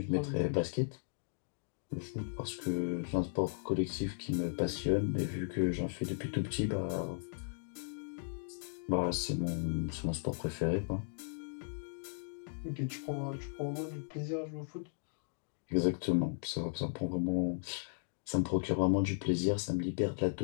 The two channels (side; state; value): right; silent; digital silence